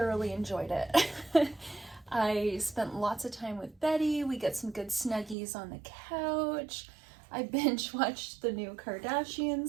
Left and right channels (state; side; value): drops out; left; at 5.4 s